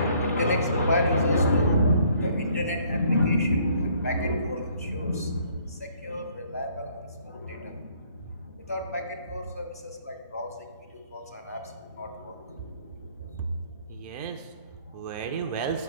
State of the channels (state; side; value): inverted; both; correlation -0.62